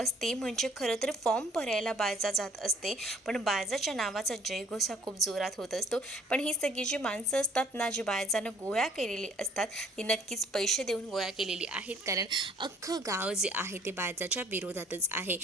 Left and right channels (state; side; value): normal; both; correlation 0.58